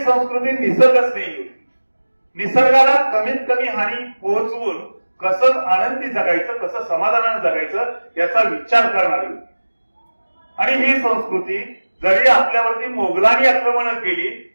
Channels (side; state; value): both; inverted; correlation -1.00